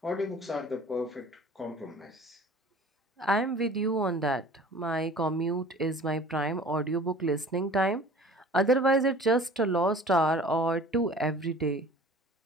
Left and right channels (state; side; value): normal; both; correlation 0.45